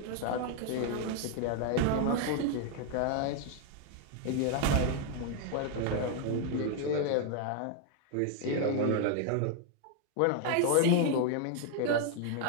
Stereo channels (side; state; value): both; different; correlation 0.00